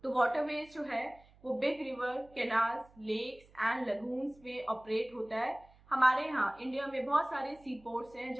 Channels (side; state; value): right; noise; hum, 27 dB below the sound